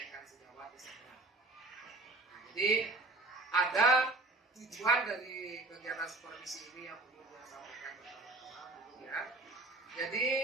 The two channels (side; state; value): left; quieter; 3.1 dB